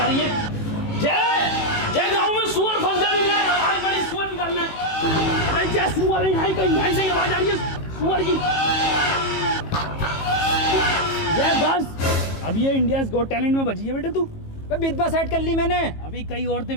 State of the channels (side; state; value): right; late; 18 ms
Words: रही है? जय जय, गाँव में सुअर फंस गए हैं, आवाज बड़ी सुअर निकालना है। अरे जय, सुअर है यहाँ कहीं, यहाँ से आवाज आ रही है सुअर की। जय बस, अब ये इंडियाज़ गॉट टैलेंट में बची है बेटे तू। विधवा सेट कर ली मैंने। अभी कई औरतें